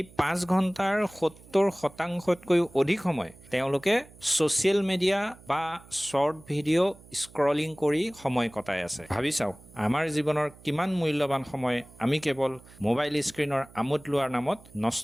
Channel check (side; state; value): right; noise; hum, 23 dB below the sound